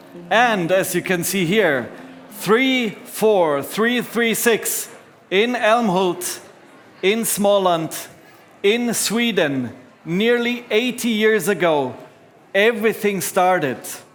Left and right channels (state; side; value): identical; both; correlation 1.00